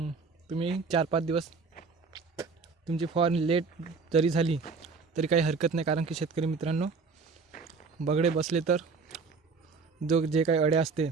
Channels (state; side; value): quieter; left; 4.7 dB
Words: तुम्ही 4-5 दिवस तुमची फवारणी लेट जरी झाली तरी काही हरकत नाही, कारण की शेतकरी मित्रांनो बगडे बसले तर जे काही अळ्या असते